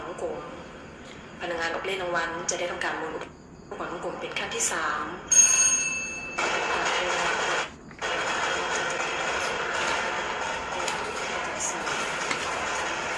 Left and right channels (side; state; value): both; identical; correlation 1.00